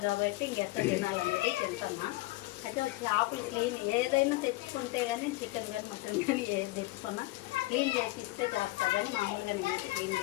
కాబట్టి ఇంకెక్కడ తినాలనేది తింటున్నా. అయితే చేపలు క్లీన్ ఏదైనా తెచ్చుకుంటే కానీ చికెన్ కానీ మటన్ కానీ ఏది తెచ్చుకున్నా క్లీన్ చేసి ఇస్తే చేస్తా, కానీ మామూలుగా నేనైతే క్లీన్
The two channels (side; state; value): right; quieter; 19.9 dB